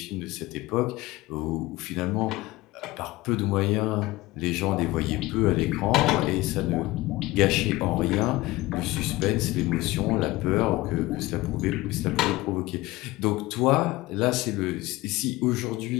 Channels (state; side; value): quieter; right; 19.5 dB